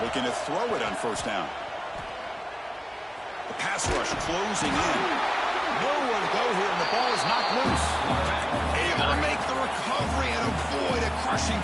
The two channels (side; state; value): both; identical; correlation 1.00